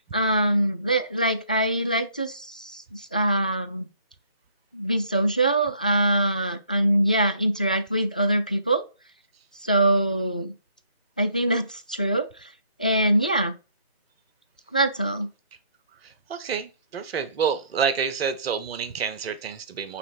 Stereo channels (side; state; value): both; inverted; correlation -0.63